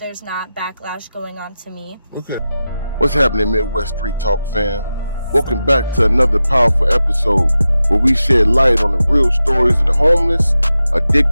not backlash going on to me. Okay. What's happening, Midwest Street Talk fam? Welcome back to another powerful episode where we shed light on the real stories of the homeless,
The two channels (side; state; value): both; inverted; correlation -0.92